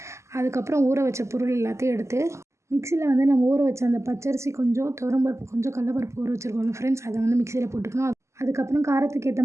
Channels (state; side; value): late; left; 0.13 ms